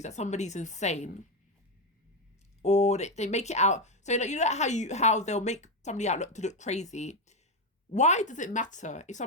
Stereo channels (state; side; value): normal; both; correlation 0.10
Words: that somebody's insane, or they make it out, so like, you know how they'll make somebody out to look crazy. Why does it matter if